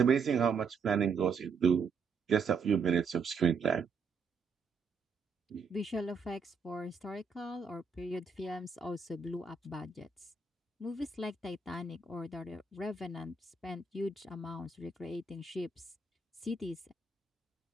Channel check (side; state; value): left; quieter; 5.0 dB